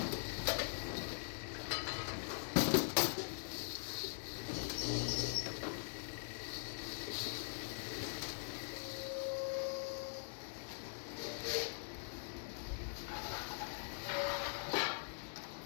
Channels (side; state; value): right; silent; digital silence